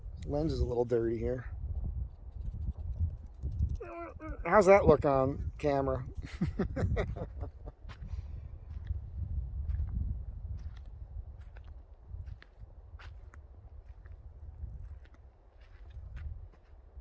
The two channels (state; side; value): identical; both; correlation 1.00